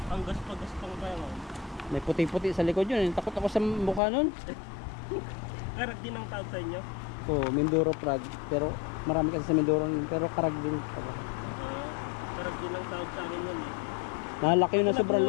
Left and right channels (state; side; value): drops out; right; at 4.0 s